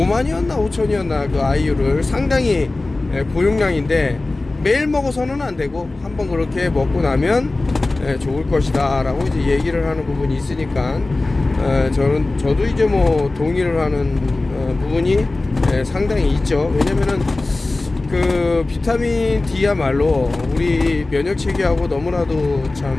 5천이었나 그 아이유를 상당히 고용량인데, 매일 먹어서는 안 되고 한번 그렇게 먹고 나면 좋을 것이다 라고 이제 얘기를 하는 부분이 있으니까, 저도 이제 뭐 동의를 하는 부분이 상당히 있죠. 왜냐면은 그 비타민 D야말로 우리 면역 체계하고 너무나도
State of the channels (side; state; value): right; quieter; 3.1 dB